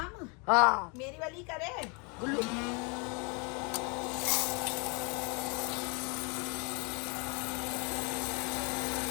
हाँ मेरी वाली करे। गुल्लू,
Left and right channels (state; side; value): quieter; right; 33.2 dB